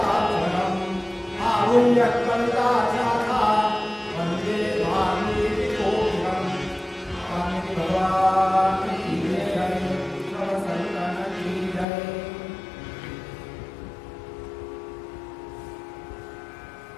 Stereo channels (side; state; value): right; drops out; at 11.9 s